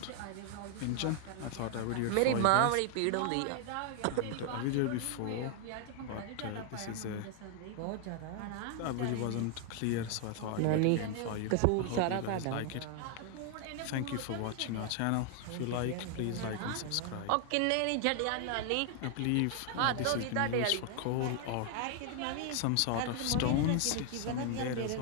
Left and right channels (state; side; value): different; both; correlation 0.00